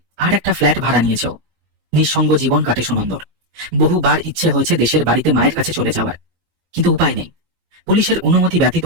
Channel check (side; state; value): left; late; 19 ms